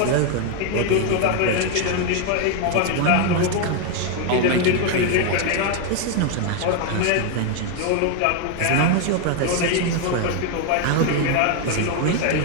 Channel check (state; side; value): different; both; correlation 0.01